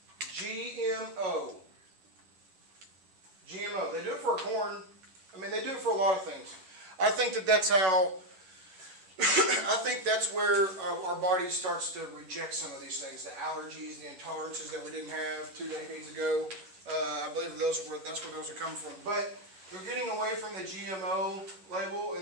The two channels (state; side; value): late; left; 11 ms